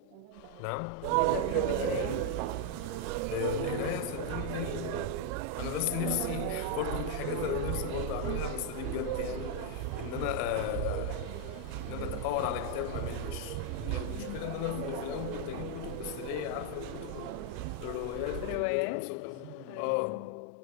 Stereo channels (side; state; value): both; different; correlation 0.00